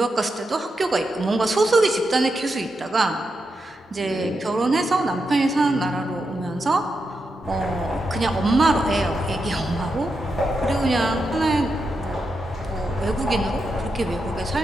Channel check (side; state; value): both; normal; correlation 0.86